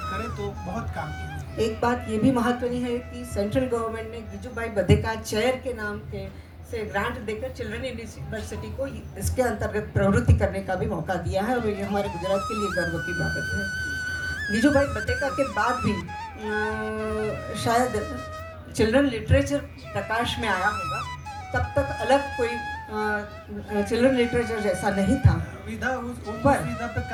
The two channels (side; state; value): both; identical; correlation 1.00